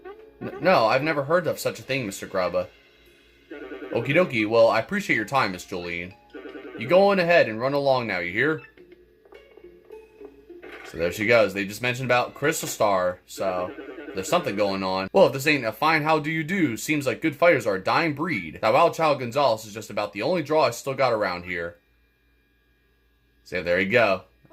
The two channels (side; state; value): both; identical; correlation 1.00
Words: No, I've never heard of such a thing, Mr. Grubba. Okie dokie, well, I appreciate your time, Miss Jolene. You go on ahead and run along now, you hear? So there she goes. They just mentioned about Crystal Star, so there's something going on. Well, if this ain't a fine how do you do, seems like good fighters are a dying breed. That wild child Gonzalez is just about the only draw I still got around here. So there you go.